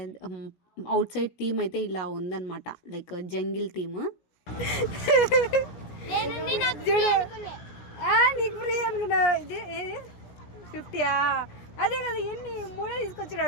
అవుట్ సైడ్ థీమ్ అయితే ఇలా ఉందన్నమాట, లైక్ జంగిల్ థీమ్. అదే కదా, ఎన్ని మూడో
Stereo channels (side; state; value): right; late; 17 ms